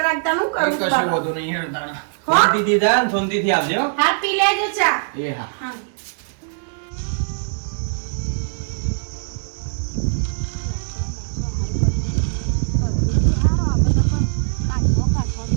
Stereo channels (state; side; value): silent; left; digital silence